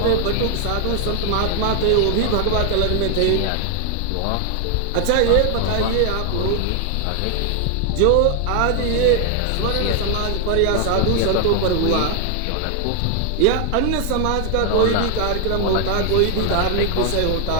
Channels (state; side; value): different; both; correlation 0.00